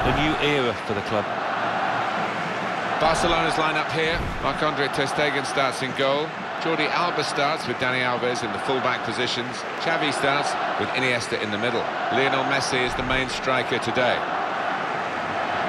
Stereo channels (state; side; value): identical; both; correlation 1.00